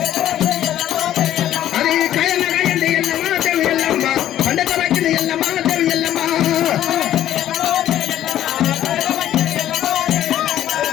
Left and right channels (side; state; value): right; quieter; 12.1 dB